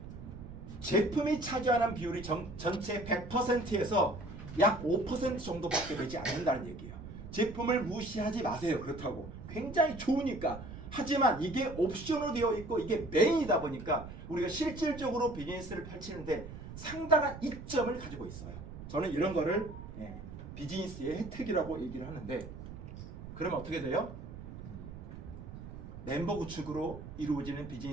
제품이 차지하는 비율이 전체 100%에서 약 5% 정도밖에 되지 않는다는 얘기예요. 제품을 무시하지 마세요. 그렇다고. 굉장히 좋으니까. 하지만 이게 옵션으로 되어 있고 이게 메인이다 보니까 우리가 실질적으로 비즈니스를 펼치는데 상당한 이점을 가지고 있어요. 저는 이런 거를 비즈니스의 혜택이라고 얘기를 하는데, 그러면 어떻게 돼요? 멤버 구축으로 이루어지는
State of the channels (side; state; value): right; noise; rumble, 12 dB below the sound